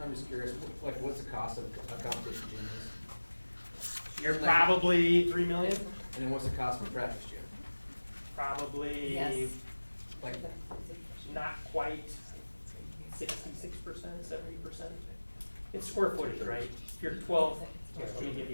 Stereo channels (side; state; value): both; inverted; correlation -1.00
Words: I'm just curious, like what's the cost of a competition gym is? You're probably $3 million. And then what's the cost of a practice gym? Probably Yes. Like, not quite 66%, 70%. It's square footage, right? If you're 12, here, let me give